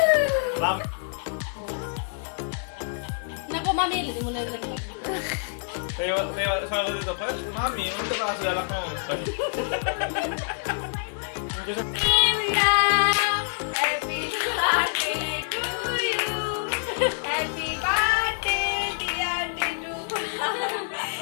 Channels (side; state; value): right; silent; 61 dB below the other